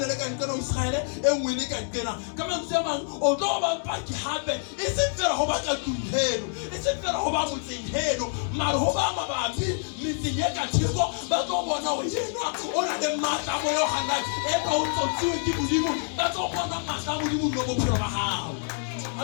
ka nkena Israele e ngwe le ka nkena ka mantswe a mang o tlo ba paki hape e seng fela ho ba ka tlung e seng fela ho ba motseng heno mara ho ba mabapi metseng e ka theko ba tlo bona ho yena o na le matla mo yo hana e ka o tsotsiwe ke modimo ba tlo bona matla mo modimo mo bophelo ba hao.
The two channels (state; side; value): silent; right; digital silence